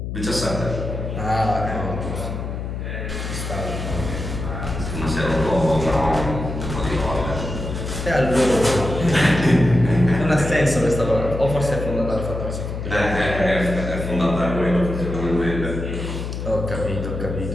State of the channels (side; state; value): left; noise; hum, 5 dB below the sound